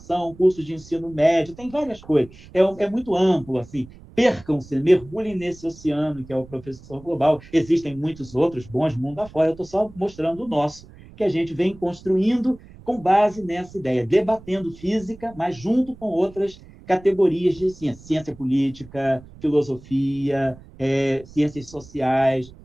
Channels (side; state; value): right; noise; rumble, 21 dB below the sound